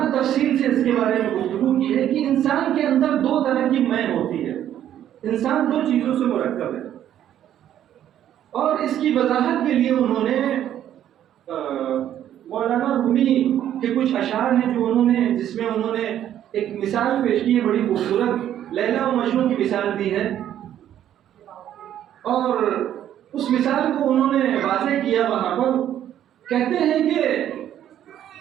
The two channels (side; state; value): left; quieter; 11.0 dB